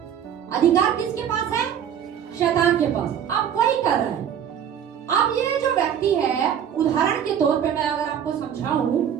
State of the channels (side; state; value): left; quieter; 9.0 dB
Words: अधिकार किसके पास है, शैतान के पास। अब वही कर रहा है। अब ये जो व्यक्ति है, उदाहरण के तौर पे मैं अगर आपको समझाऊं,